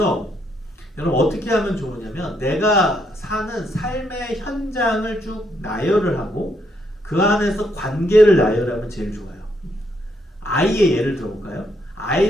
여러분 어떻게 하면 좋으냐면 내가 사는 삶의 현장을 쭉 나열을 하고 그 안에서 관계를 나열하면 제일 좋아요. 아이의 예를 들어볼까요?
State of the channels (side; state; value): both; normal; correlation 0.75